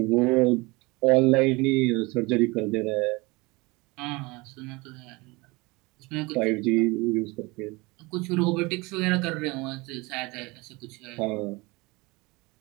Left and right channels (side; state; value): left; quieter; 24.5 dB